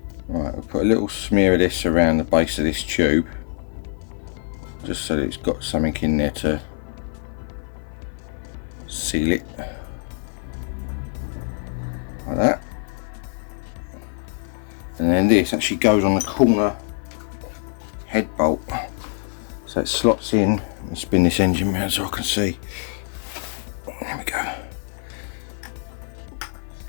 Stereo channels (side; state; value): right; silent; 55 dB below the other